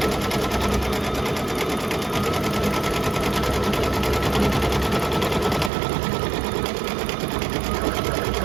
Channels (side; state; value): left; drops out; at 5.7 s